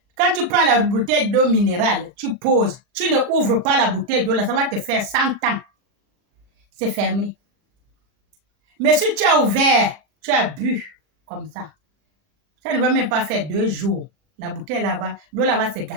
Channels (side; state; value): left; late; 39 ms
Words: Quand tu prends la bouteille d'eau minérale, tu poses. Tu ne ouvres pas la bouteille d'eau là, ça va te faire 100 ans. C'est fermé. Mais si tu as ouvert, tu as bu comme ça. Ça ne va même pas faire 2 jours. La bouteille là-bas, l'eau là va se